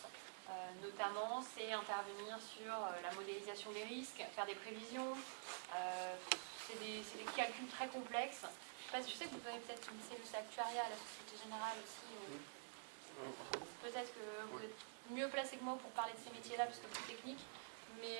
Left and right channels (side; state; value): left; silent; digital silence